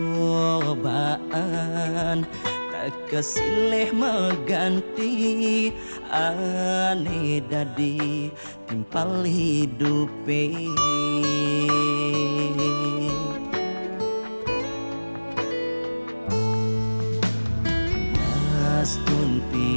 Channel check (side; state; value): both; inverted; correlation -1.00